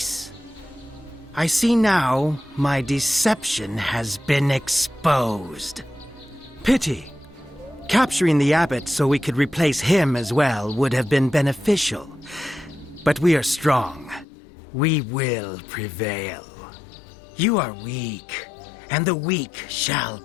I see now my deception has been exposed. Pity. Capturing the abbot so we could replace him as well would have been beneficial. But we are strong. We will prevail. You are weak, and the weak shall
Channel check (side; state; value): right; drops out; at 14.2 s